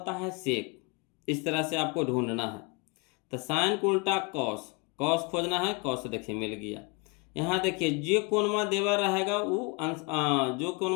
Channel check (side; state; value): right; quieter; 29.4 dB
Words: है सेक। इस तरह से आपको ढूंढना है। तो साइन को उल्टा कॉस, कॉस खोजना है, कॉस देखिए मिल गया। यहाँ देखिए जो कोनमा देवर रहेगा वो जो